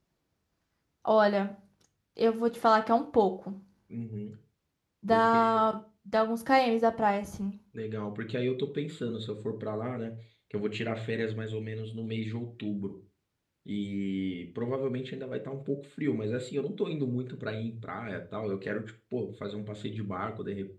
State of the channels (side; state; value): both; identical; correlation 1.00